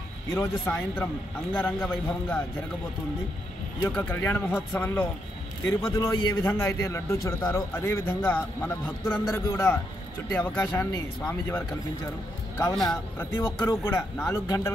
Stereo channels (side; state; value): both; normal; correlation 0.79